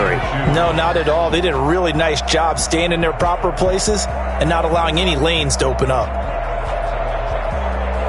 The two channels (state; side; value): identical; both; correlation 1.00